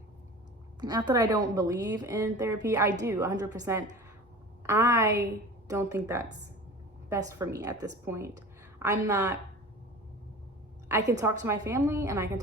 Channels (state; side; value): normal; both; correlation 0.37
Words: not that I don't believe in therapy. I do 100%. I don't think that's best for me at this point. I can talk to my family and I can